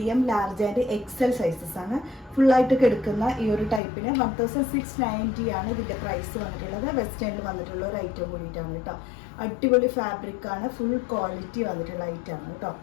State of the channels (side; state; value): right; drops out; at 3.8 s